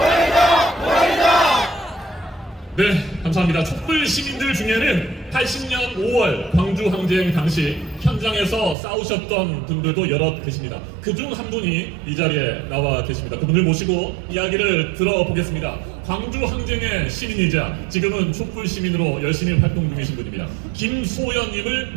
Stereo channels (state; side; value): drops out; left; at 8.8 s